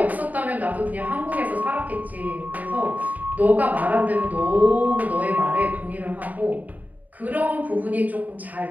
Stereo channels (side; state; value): left; late; 0.078 ms